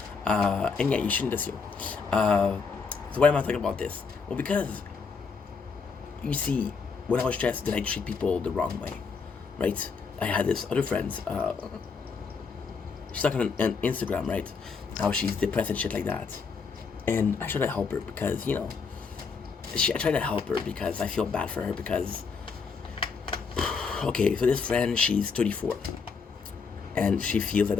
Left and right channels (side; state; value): right; quieter; 5.3 dB